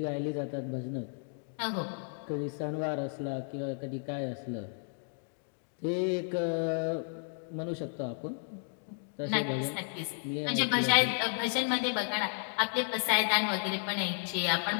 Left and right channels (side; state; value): right; silent; 56 dB below the other